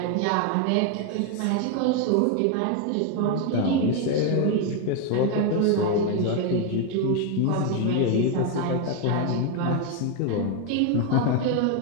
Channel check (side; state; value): both; different; correlation 0.01